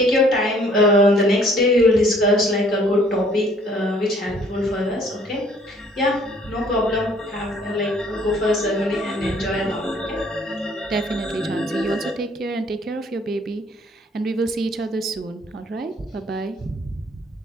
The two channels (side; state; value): both; normal; correlation 0.60